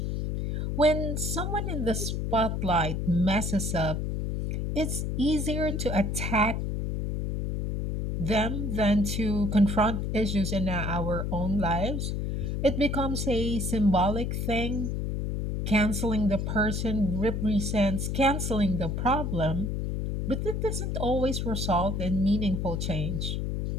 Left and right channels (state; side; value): noise; left; hum, 1 dB below the sound